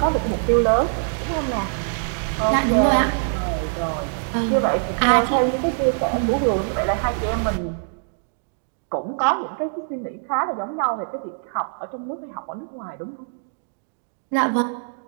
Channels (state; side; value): silent; left; digital silence